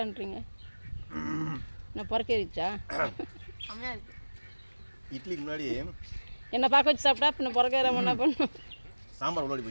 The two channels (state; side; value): inverted; both; correlation -1.00